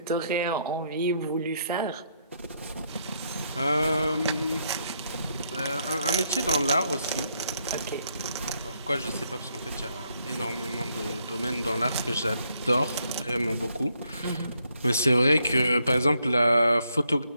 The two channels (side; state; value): both; inverted; correlation -0.74